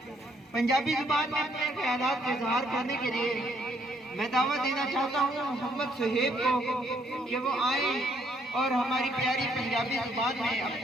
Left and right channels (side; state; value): both; normal; correlation 0.69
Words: پنجابی زبان میں اپنے خیالات کا اظہار کرنے کے لیے میں دعوت دینا چاہتا ہوں محمد صہیب کو کہ وہ آئیں اور ہماری پیاری پنجابی زبان میں